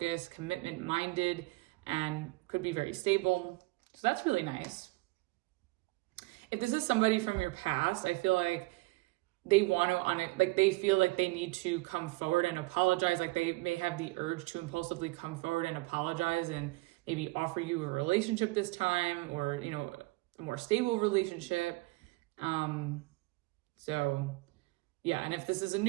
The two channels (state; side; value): quieter; left; 23.3 dB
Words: commitment minded, and could be very stable. So that's really nice. If this is somebody from your past, I feel like they want to, they feel like they need to come forward and apologize. Like they may have the urge to impulsively come forward and apologize and maybe offer you a relationship this time, or, a more stable relationship. So yeah. And if this is a